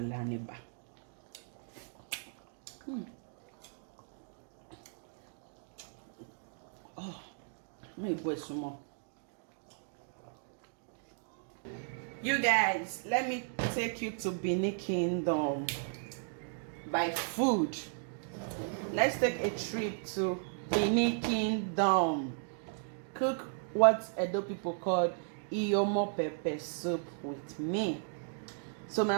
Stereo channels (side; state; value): left; silent; digital silence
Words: and eba. Oh, maybe boy some more. You guys, let me take you to Benin Kingdom by food. Let's take a trip to Benin Kingdom. Cook what Edo people call Iyomo pepper soup with me. So my